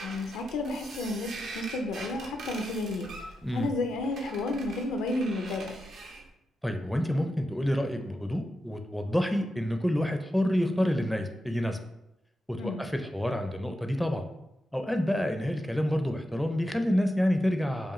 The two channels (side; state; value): both; normal; correlation 0.88